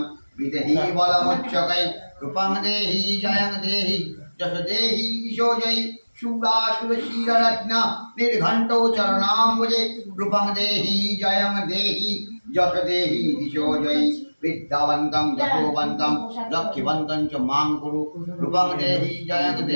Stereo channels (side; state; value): both; inverted; correlation -1.00